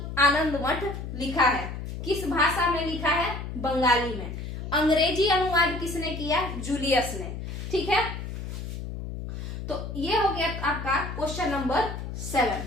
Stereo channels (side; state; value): left; noise; hum, 7 dB below the sound